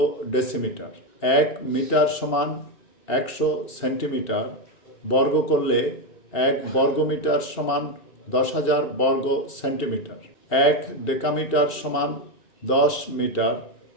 ডেসিমিটার। 1 মিটার সমান 100 সেন্টিমিটার, বর্গ করলে 1 বর্গমিটার সমান 10,000 বর্গ সেন্টিমিটার। 1 ডেকামিটার সমান 10 মিটার,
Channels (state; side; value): late; right; 2.7 ms